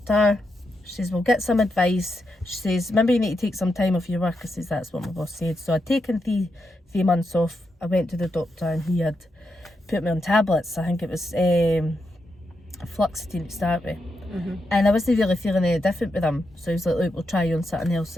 She says, we'll get some advice. She says, maybe you need to take some time off your work. I says, that's what my boss said. So I'd taken three months off. I went to the doctor and he had put me on tablets. I think it was fluoxetine to start with. And I wasn't really feeling any different with them. So he was like, look, we'll try you on something else.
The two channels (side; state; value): both; normal; correlation 0.84